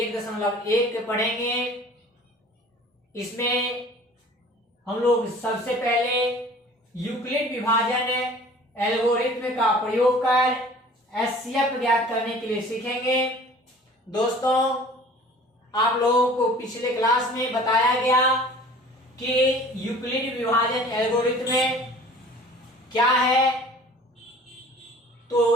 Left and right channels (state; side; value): normal; both; correlation 0.46